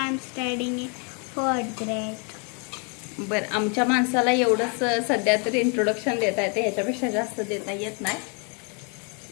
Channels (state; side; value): quieter; right; 36.5 dB